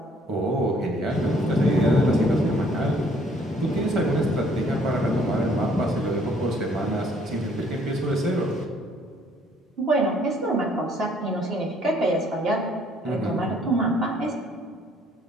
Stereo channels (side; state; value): both; normal; correlation 0.62